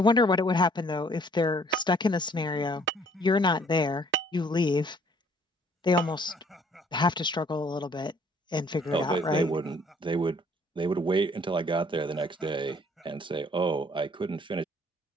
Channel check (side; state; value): both; normal; correlation 0.60